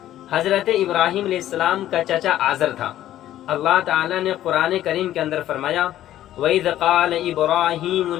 حضرت ابراہیم علیہ السلام کا چچا آزر تھا۔ اللہ تعالیٰ نے قرآن کریم کے اندر فرمایا، وَإِذْ قَالَ إِبْرَاهِيمُ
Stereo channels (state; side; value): quieter; right; 12.9 dB